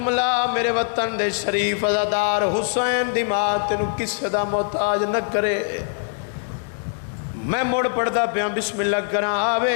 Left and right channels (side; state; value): right; silent; digital silence